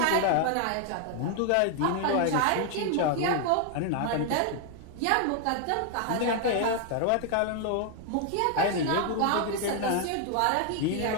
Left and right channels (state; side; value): different; both; correlation 0.01